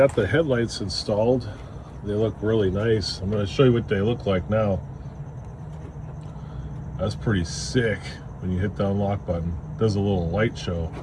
the headlights installed. They look really nice. I'm going to show you what they look like now. That's pretty sick. When you hit the unlock button, it does a little light show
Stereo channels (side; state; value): both; identical; correlation 1.00